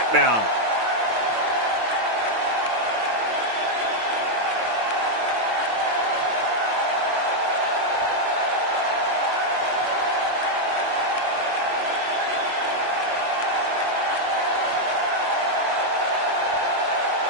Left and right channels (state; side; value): late; left; 9.1 ms